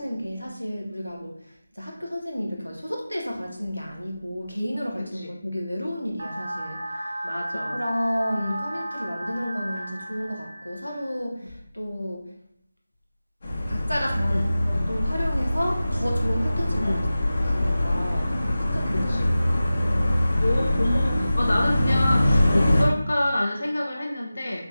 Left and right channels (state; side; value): inverted; both; correlation -0.96